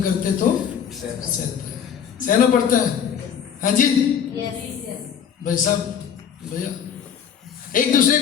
तो सहते हैं, सहना पड़ता है। हाँ जी भाई साहब, भैया एक दूसरे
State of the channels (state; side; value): quieter; right; 8.1 dB